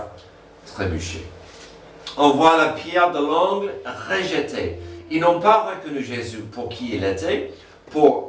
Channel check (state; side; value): identical; both; correlation 1.00